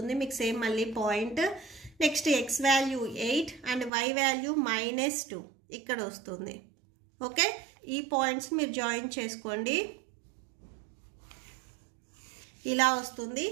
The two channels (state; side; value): drops out; left; at 3.9 s